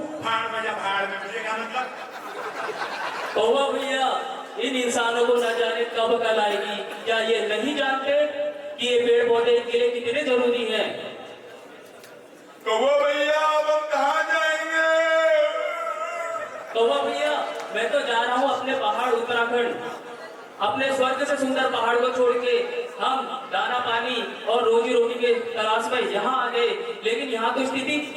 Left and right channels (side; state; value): both; identical; correlation 1.00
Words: भाड़ में जा, भाड़ में। मुझे क्या मतलब? कौवा भैया, इन इंसानों को न जाने कब अकल आएगी। क्या ये नहीं जानते कि ये पेड़ पौधे इनके लिए कितने जरूरी हैं? कौवा भैया, अब हम कहाँ जाएंगे? कौवा भैया, मैं तो जा रहा हूँ अपने पहाड़ उत्तराखंड। अपने स्वर्ग से सुंदर पहाड़ को छोड़ के हम दाना पानी और रोजी रोटी के तलाश में यहाँ आ गए, लेकिन यहाँ तो